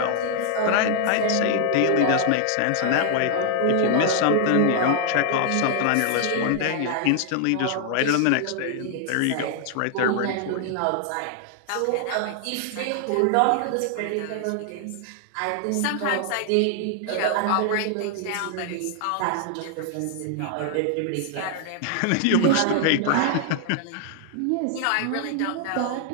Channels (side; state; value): both; different; correlation 0.00